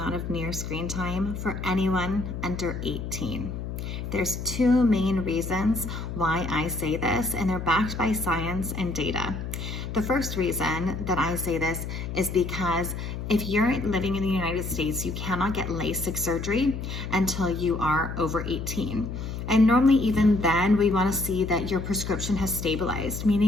of near screen time for anyone under 18. There's two main reasons why I say this, and they're backed by science and data. The first reason that I say this is because if you're living in the United States, you cannot get LASIK surgery until you are over 18. And normally even then, we want to see that your prescription has stabilized,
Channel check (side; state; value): left; noise; hum, 6 dB below the sound